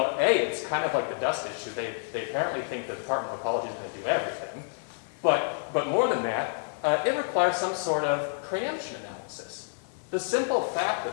A, it's kind of like the dust issue. They apparently think the Department of Ecology is going to do everything. But more than that, it requires some sort of preemption analysis. The simple fact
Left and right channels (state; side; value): silent; right; 59 dB below the other